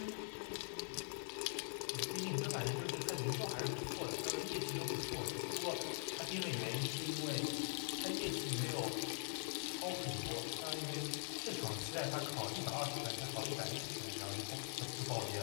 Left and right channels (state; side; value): silent; right; digital silence